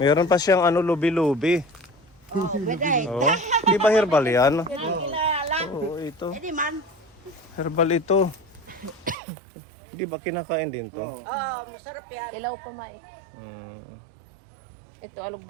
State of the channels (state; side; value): drops out; left; at 9.2 s